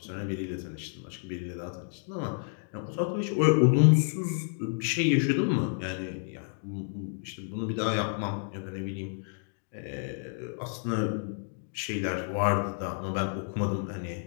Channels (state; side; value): silent; right; 58 dB below the other